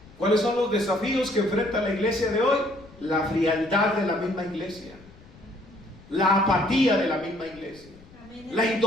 ¿Cuáles son los desafíos que enfrenta la iglesia de hoy? La frialdad de la misma iglesia, la apatía de la misma iglesia, la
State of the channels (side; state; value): left; noise; rumble, 23 dB below the sound